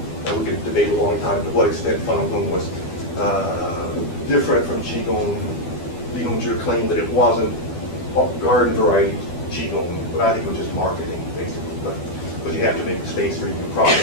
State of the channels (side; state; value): right; late; 12 ms